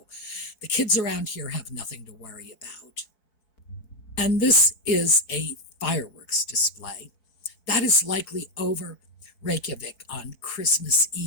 the kids around here have nothing to worry about. And this is a fireworks display. That is likely over Reykjavik on Christmas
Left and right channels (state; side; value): late; right; 4.5 ms